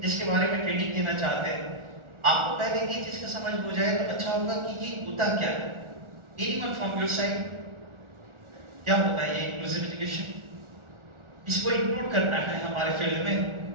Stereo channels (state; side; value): late; left; 1.4 ms